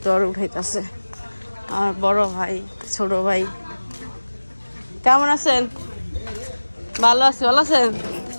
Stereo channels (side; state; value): both; inverted; correlation -1.00